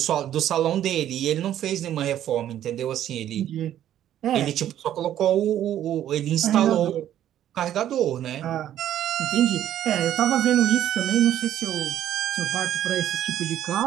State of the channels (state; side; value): quieter; left; 11.5 dB